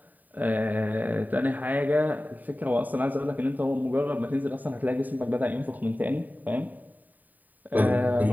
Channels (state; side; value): late; left; 0.084 ms